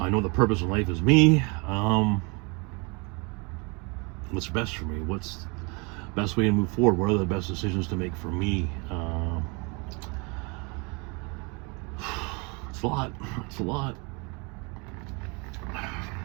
know the purpose in life is me. What's best for me? What's the best way to move forward? What are the best decisions to make for me? It's a lot. It's a lot.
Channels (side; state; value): left; quieter; 30.8 dB